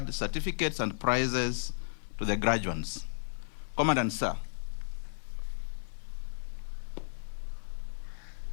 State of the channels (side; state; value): right; silent; 55 dB below the other